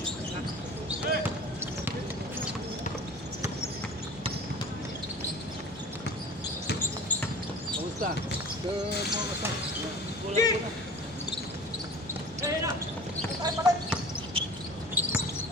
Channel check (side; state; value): both; normal; correlation 0.40